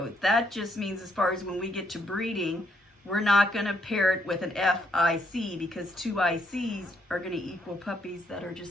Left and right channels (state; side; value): normal; both; correlation 0.73